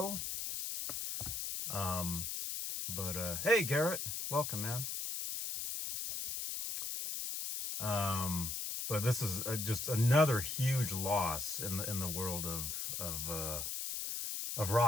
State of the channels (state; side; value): noise; left; hiss, 3 dB below the sound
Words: But hey Garrett, welcome, man. But this is just another huge loss in the world of